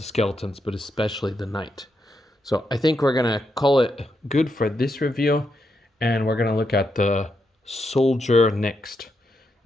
skeletons, but especially the Knight. So I think we're going to call it good for this review, and we're going to look at the Soldier next.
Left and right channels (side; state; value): both; normal; correlation 0.82